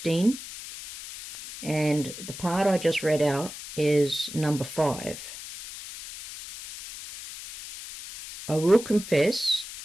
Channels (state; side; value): noise; left; hiss, 12 dB below the sound